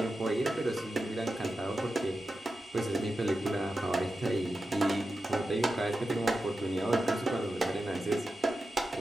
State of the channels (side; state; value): both; normal; correlation 0.91